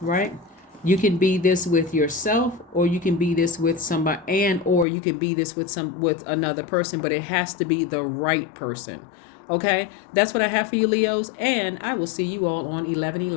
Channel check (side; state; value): right; drops out; at 4.9 s